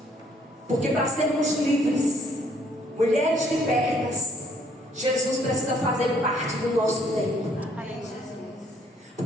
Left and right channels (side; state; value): both; normal; correlation 0.64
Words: Porque para sermos livres, mulheres libertas, Jesus precisa fazer parte do nosso tempo.